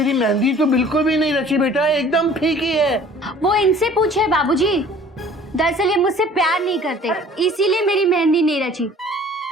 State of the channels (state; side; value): normal; both; correlation 0.50